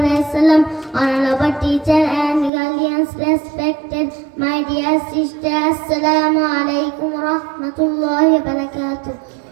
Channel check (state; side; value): drops out; left; at 2.5 s